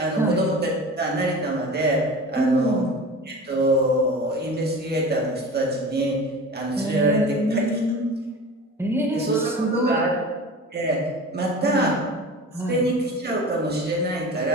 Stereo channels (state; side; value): normal; both; correlation 0.35